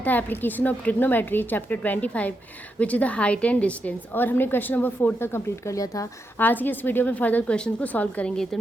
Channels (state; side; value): normal; both; correlation 0.84